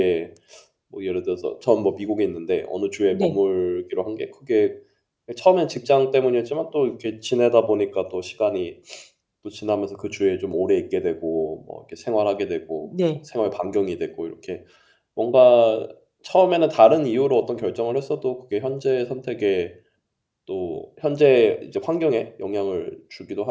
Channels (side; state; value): both; identical; correlation 1.00